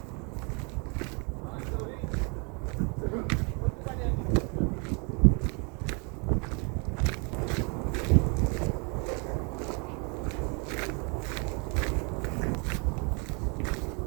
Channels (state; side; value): quieter; left; 34.1 dB